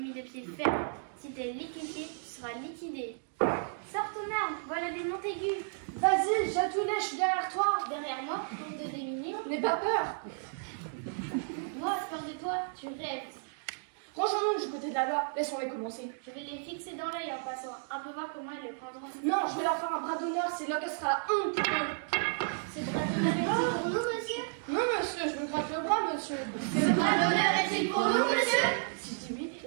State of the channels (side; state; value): left; silent; digital silence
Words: de pied ferme. Si t'es liquéfié, tu seras liquidé. Sors ton arme, voilà des Montaigu. Vas-y, Chatounet, je suis derrière toi. Derrière moi, pour te déminer. N'aie pas peur. Moi, peur de toi, tu rêves. Rangeons-nous du côté de la loi, laissons-les commencer. Je vais les fixer dans l'œil en passant, un peu voir comment ils le prendront. Non, je vais leur faire un bras d'honneur, c'est là qu'elle sera honte pour eux. C'est bras d'honneur est-il pour nous, monsieur? Non, monsieur, je me gratte le bras, monsieur. Ce bras d'honneur est-il pour nous, monsieur? Si je dis oui,